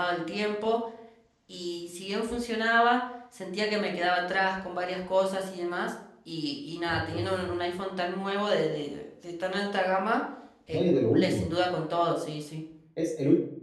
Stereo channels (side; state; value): both; identical; correlation 1.00